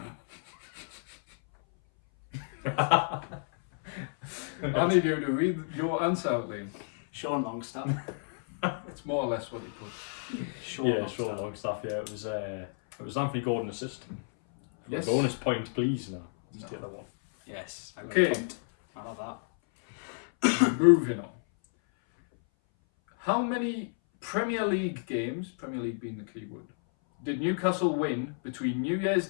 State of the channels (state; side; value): silent; right; 57 dB below the other